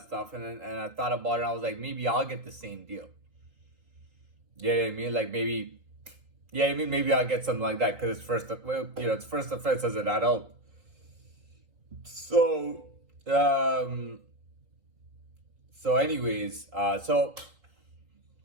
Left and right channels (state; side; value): late; left; 3.8 ms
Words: stuff and I thought about it. And I was like, maybe I'll get the same deal. You know what I mean? Like maybe I'll get something like that because it's first offense as an adult. So, anyways, that's what